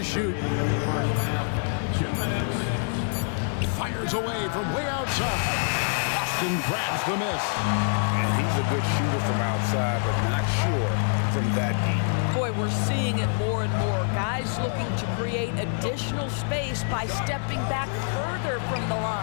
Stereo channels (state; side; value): silent; right; digital silence